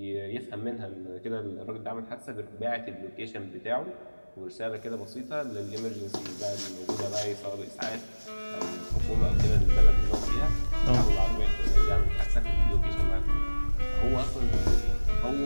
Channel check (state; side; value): inverted; both; correlation -1.00